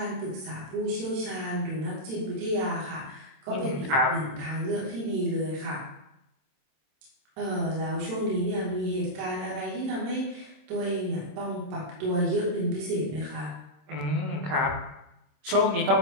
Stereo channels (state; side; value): late; left; 27 ms